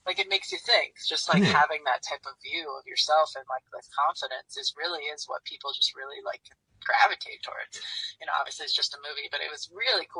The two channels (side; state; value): both; identical; correlation 1.00